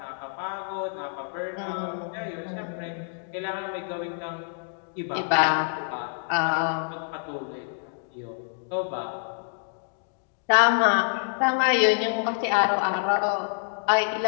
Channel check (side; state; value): right; silent; digital silence